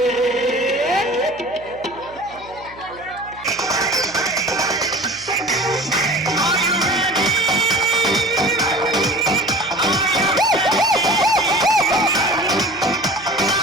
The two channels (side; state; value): right; noise; hum, 22 dB below the sound